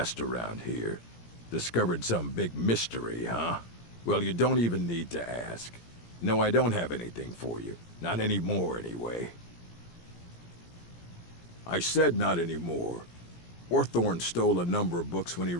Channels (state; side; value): late; right; 17 ms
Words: around here. Discovered some big mystery, huh? Well, you don't even need to ask. No, I don't have anything for you. Not anymore, anyway. I said not anymore. Orthorn stole a number of books when he